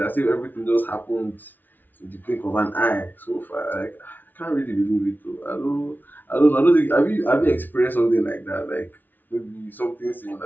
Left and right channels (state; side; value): late; right; 0.087 ms